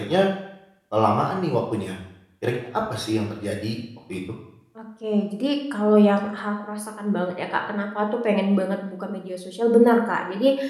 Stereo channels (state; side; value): identical; both; correlation 1.00